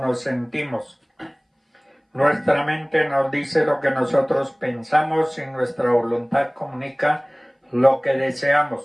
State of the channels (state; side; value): identical; both; correlation 1.00